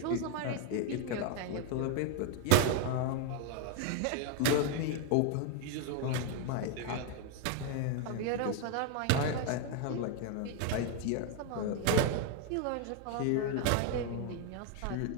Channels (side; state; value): both; different; correlation 0.01